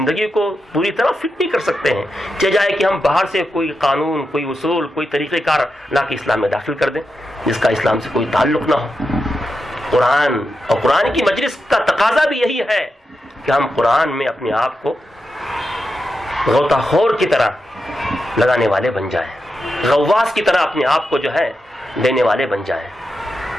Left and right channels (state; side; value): normal; both; correlation 0.88